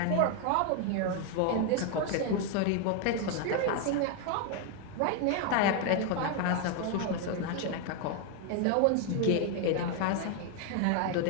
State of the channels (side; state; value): both; different; correlation 0.01